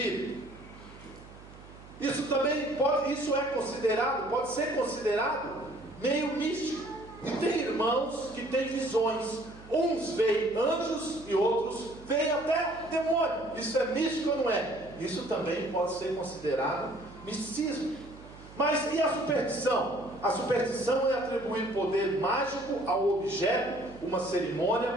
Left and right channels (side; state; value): right; noise; hum, 19 dB below the sound